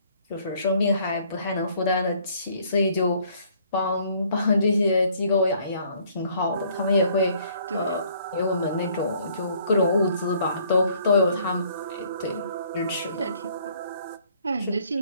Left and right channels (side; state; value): both; inverted; correlation -0.61